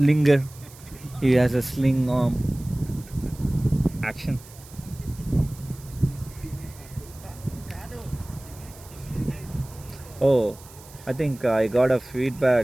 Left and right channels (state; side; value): noise; right; hiss, 21 dB below the sound